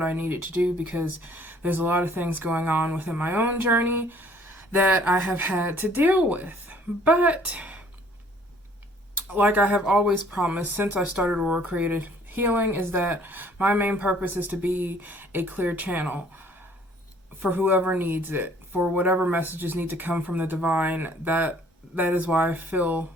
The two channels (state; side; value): normal; both; correlation 0.58